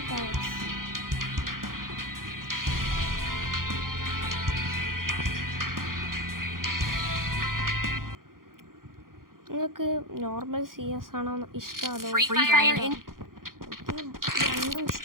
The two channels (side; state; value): left; late; 0.91 ms